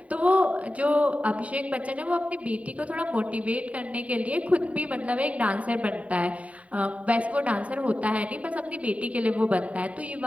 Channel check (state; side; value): late; left; 0.067 ms